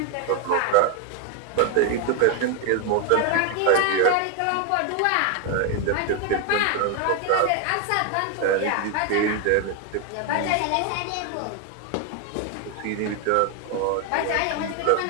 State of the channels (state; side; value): different; both; correlation 0.01